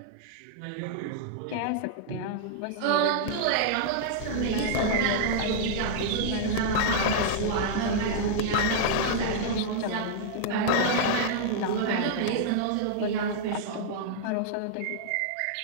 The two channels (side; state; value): both; different; correlation -0.01